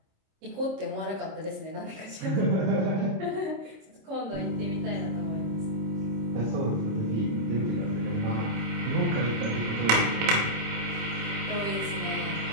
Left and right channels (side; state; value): left; late; 26 ms